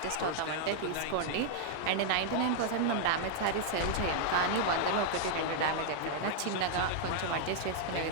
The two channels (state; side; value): different; both; correlation 0.00